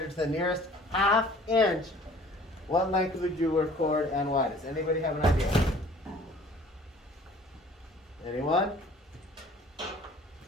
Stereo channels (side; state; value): both; normal; correlation 0.51